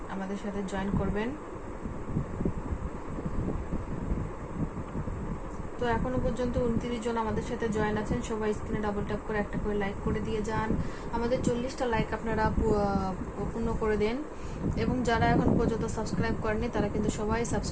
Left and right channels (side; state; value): both; identical; correlation 1.00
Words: আমাদের সাথে জয়েন করবেন। তো এখনো পর্যন্ত 29 জন আমাদের সাথে জয়েন আছেন। সবাই স্ক্রিনে ডাবল ট্যাপ করে একটা করে লাইক করে দিয়ে যান। আমাদের 40টা লাইক আপনারা পূর্ণ করে দেন এবং যারা এখন পর্যন্ত সাবস্ক্রাইব করেননি তারা কিন্তু সবাই